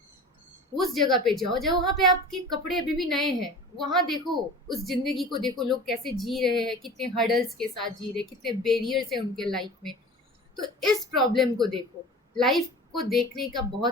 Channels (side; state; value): both; normal; correlation 0.38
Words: उस जगह पे जाओ जब वहाँ पे आपके कपड़े अभी भी नए हैं, वहाँ देखो, उस जिंदगी को देखो, लोग कैसे जी रहे हैं, कितने हर्डल्स के साथ जी रहे, कितने बैरियर्स हैं उनके लाइफ में. तो इस प्रॉब्लम को देखो. लाइफ को देखने का